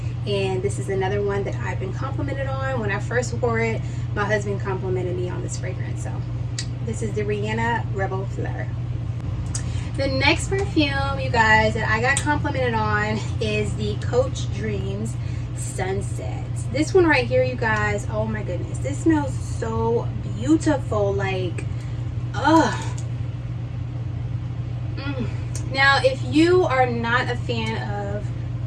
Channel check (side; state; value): both; identical; correlation 1.00